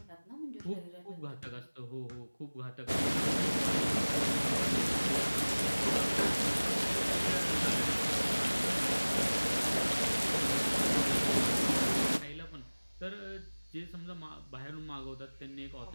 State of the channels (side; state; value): both; inverted; correlation -1.00